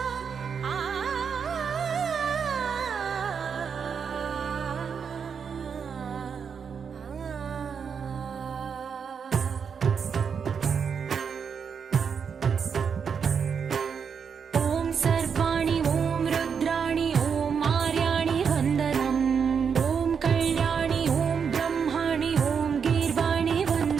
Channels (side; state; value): left; quieter; 6.6 dB